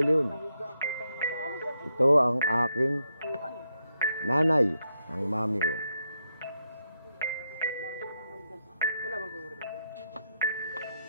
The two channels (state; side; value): inverted; both; correlation -0.82